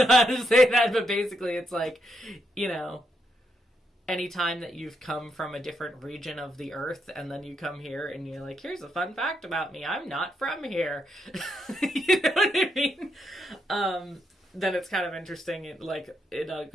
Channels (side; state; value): both; normal; correlation 0.79